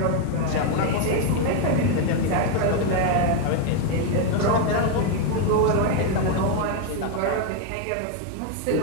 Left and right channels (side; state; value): both; different; correlation 0.01